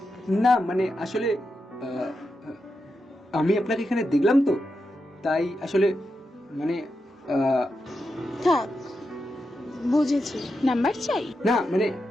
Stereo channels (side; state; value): both; normal; correlation 0.87